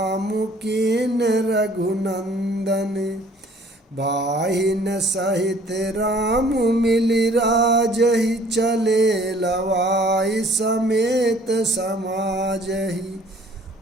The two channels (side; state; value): both; normal; correlation 0.55